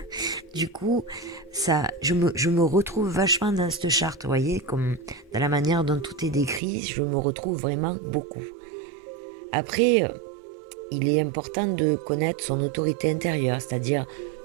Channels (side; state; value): left; drops out; at 6.6 s